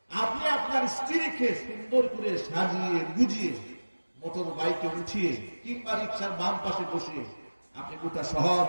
আপনি আপনার স্ত্রীকে সুন্দর করে সাজিয়ে গুজিয়ে মোটর বাইকে উঠিয়ে কিংবা রিক্সার বাম পাশে বসিয়ে আপনি গোটা শহর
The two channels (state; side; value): inverted; both; correlation -1.00